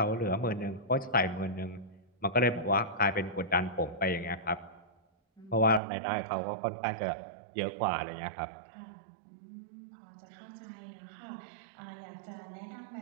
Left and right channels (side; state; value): left; drops out; at 5.8 s